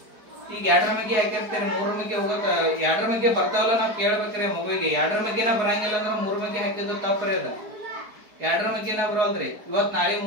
ಈಗ 2ರ ಬಗ್ಗೆ ಹಾಕಿರ್ತೀರಿ, 3ರ ಬಗ್ಗೆ ಹೋಗಕ್ 2ರ ಬಗ್ಗೆ ಬರ್ತಾವಲ್ಲ ನಾವ್ ಕೇಳ್ಬೇಕ್ರಿ ಮಗುವಿಗೆ. 2ರ ಬಗ್ಗೆನ ಬರಂಗಿಲ್ಲ ಅಂದ್ರೆ 3 ಬಗ್ಗೆ ಹಾಕಿದ್ರು ತಪ್ಪ್ರಿ. ಅದ 2ರ ಬಗ್ಗೆನ ಬರೋಲ್ರಿ. ಇವತ್ ನಾಳೆ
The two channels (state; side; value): late; left; 4.6 ms